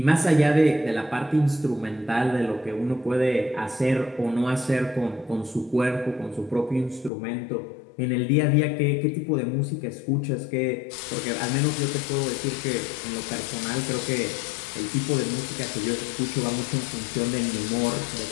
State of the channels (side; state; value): right; drops out; at 7.1 s